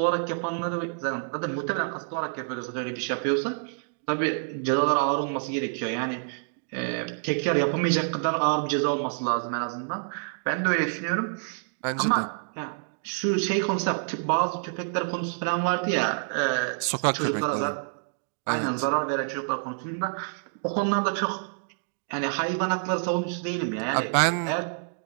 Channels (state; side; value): silent; left; digital silence